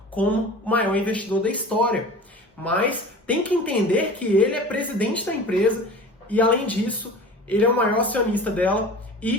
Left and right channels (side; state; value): both; normal; correlation 0.38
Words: como o maior investidor da história. Mas tem que entender que ele é presidente da empresa e, além disso, ele é o maior acionista dela